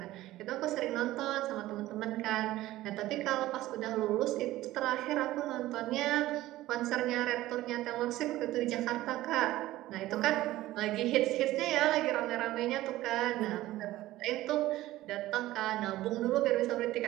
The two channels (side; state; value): left; quieter; 16.1 dB